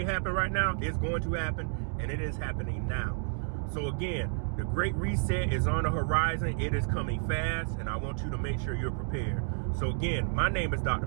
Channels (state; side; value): silent; left; 57 dB below the other